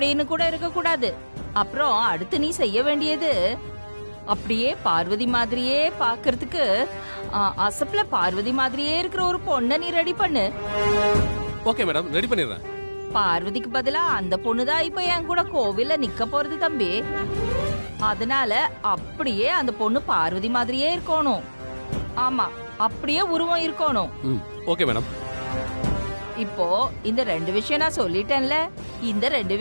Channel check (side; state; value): both; inverted; correlation -1.00